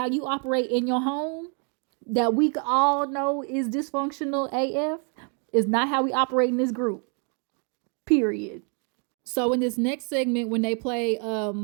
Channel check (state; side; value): quieter; left; 39.7 dB